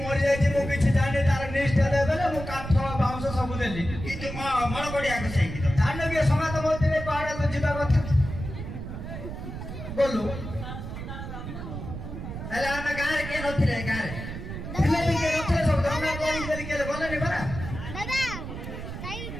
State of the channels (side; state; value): right; noise; rumble, 8 dB below the sound